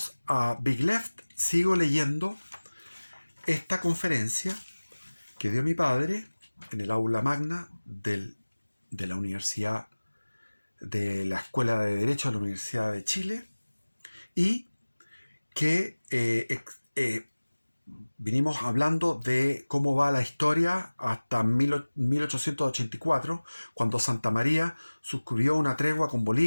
a Big Left. Sigo leyendo esta conferencia que dio mi padre en el aula magna de la Universidad, de la Escuela de Derecho de la Universidad de Chile, y que vinimos hablando de cómo va la historia hasta 1884, cuando Santa María suscribió una tregua con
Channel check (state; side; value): inverted; both; correlation -1.00